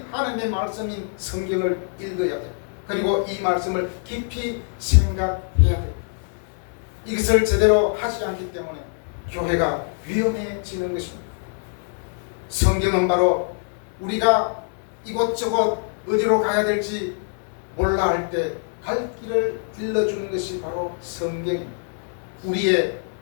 하나님의 말씀인 성경을 읽어야 돼요. 그리고 이 말씀을 깊이 생각해야 돼요. 이것을 제대로 하지 않기 때문에 교회가 위험해지는 것입니다. 성경은 바로 우리가 이곳저곳 어디로 가야 될지 몰라 할 때 갈 길을 일러주는 것이 바로 성경입니다. 우리의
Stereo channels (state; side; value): silent; right; 58 dB below the other